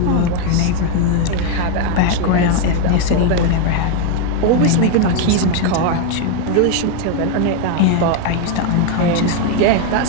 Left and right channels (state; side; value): different; both; correlation 0.01